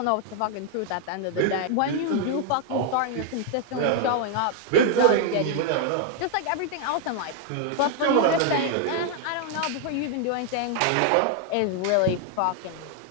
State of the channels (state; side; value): different; both; correlation 0.00